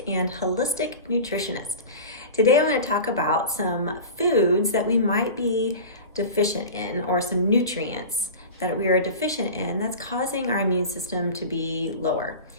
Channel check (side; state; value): both; inverted; correlation -0.32